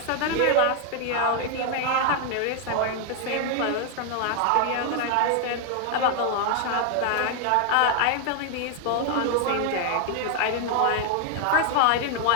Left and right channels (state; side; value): different; both; correlation 0.00